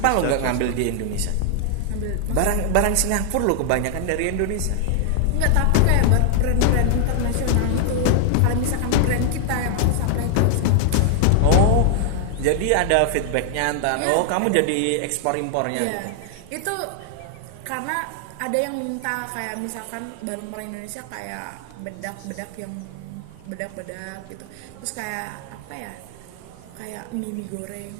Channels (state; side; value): different; both; correlation 0.00